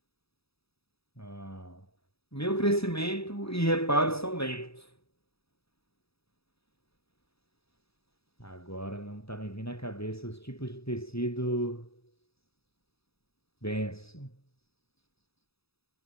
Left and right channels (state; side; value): late; right; 0.77 ms